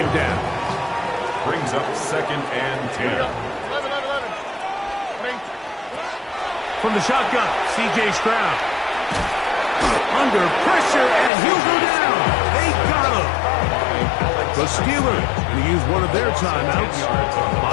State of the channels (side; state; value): right; drops out; at 11.3 s